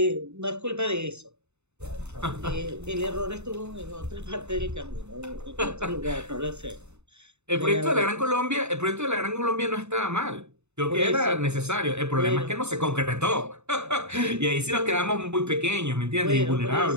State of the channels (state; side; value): late; left; 0.82 ms